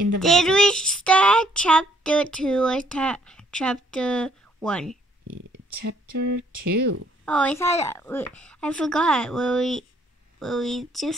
the wagon. Did we start chapter 2 or chapter 1? Chapter 2. Oh, I forgot. Will we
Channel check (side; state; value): both; normal; correlation 0.66